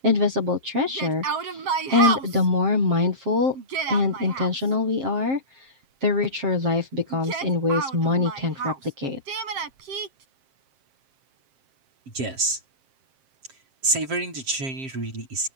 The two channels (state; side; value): late; left; 7.5 ms